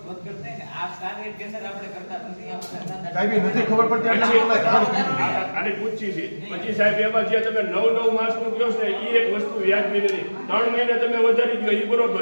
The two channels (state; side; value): inverted; both; correlation -1.00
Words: વધઘટ થાય ને આ સ્ટાર રેટ ટેન્ડર આપણે કરતા નથી સાહેબ એ નથી ખબર પડતી એટલે આને પૂછી છે પછી સાહેબ એમાં જે તમે 9 માસનું કહો છો ને એ એક વસ્તુ વ્યાજબી નથી 3 મહિને તમે વધારી દો એ